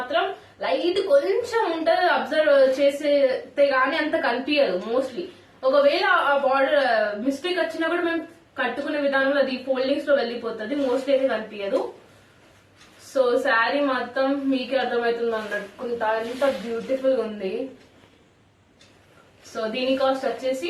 లైట్ కొంచెం ఉంటుంది. అబ్జర్వ్ చేస్తే గానీ అంత కనిపించదు మోస్ట్లీ. ఒకవేళ ఆ బార్డర్ మిస్టేక్ వచ్చినా కూడా మేము కట్టుకునే విధానంలో అది ఫోల్డింగ్స్ లో వెళ్ళిపోతుంది, మోస్ట్లీ అయితే కనిపించదు. సో శారీ మొత్తం మీకే అర్థమవుతుంది అన్నట్టుకుంటా, ఎంత బ్యూటిఫుల్ ఉంది. సో దీని కాస్ట్ వచ్చేసి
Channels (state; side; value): identical; both; correlation 1.00